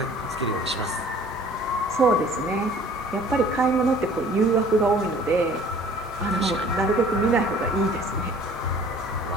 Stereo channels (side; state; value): both; normal; correlation 0.51